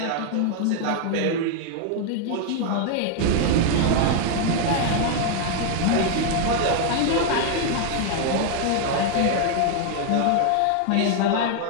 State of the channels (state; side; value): different; both; correlation 0.00